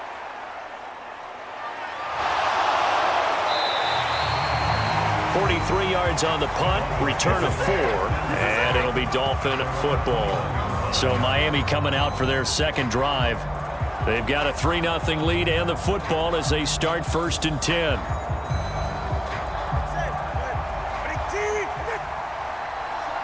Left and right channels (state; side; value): identical; both; correlation 1.00